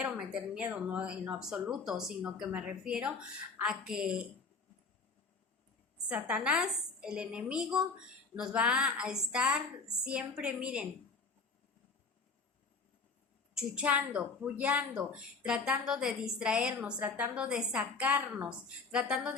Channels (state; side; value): quieter; right; 4.4 dB